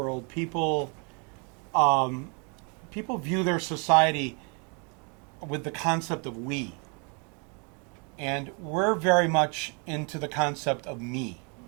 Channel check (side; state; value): left; quieter; 35.2 dB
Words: people view their society with the concept of we. And we're very much into the concept of me.